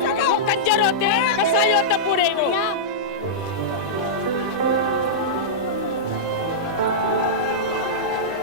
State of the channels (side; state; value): both; normal; correlation -0.10